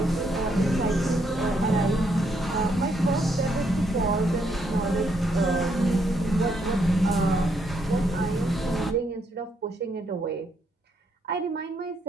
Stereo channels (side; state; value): both; normal; correlation 0.74